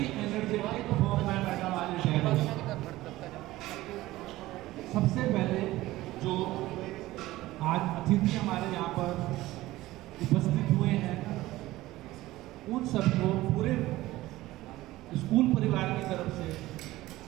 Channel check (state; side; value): quieter; left; 17.2 dB